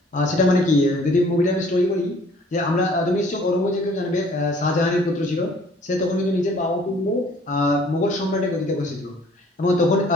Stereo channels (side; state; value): both; normal; correlation 0.56